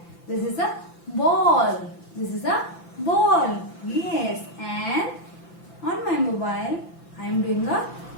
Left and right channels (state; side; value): late; right; 5.9 ms